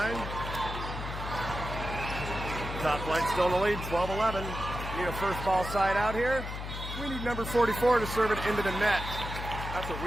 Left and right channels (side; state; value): left; noise; hum, 7 dB below the sound